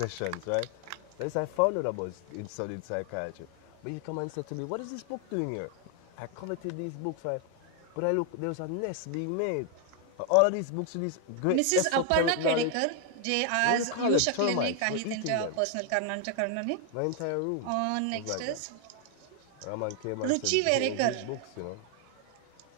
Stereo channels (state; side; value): different; both; correlation 0.00